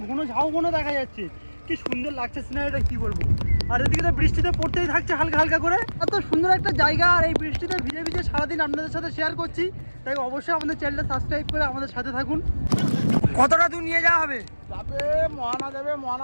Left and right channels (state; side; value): inverted; both; correlation -1.00